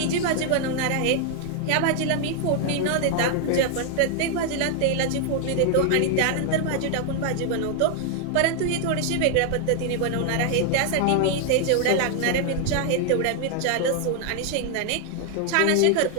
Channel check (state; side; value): different; both; correlation 0.00